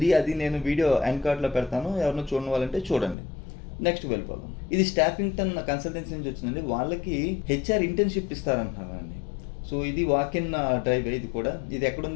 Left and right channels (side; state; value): right; drops out; at 3.2 s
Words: అది నేను వీడియో ఎండ్ కార్డ్లో పెడతాను, ఎవరైనా చూడని వాళ్ళంటే చూడండి. నెక్స్ట్ వెళ్ళిపోదాం. ఇది స్టాఫింగ్టన్ కన్సల్టెన్సీ నుంచి వచ్చిందండి. వాళ్ళకి హెచ్ఆర్ ఇంటర్న్షిప్ ఇస్తారంటున్నారండి. సో ఇది వాక్ ఇన్ డ్రైవ్. ఇది కూడా ఇది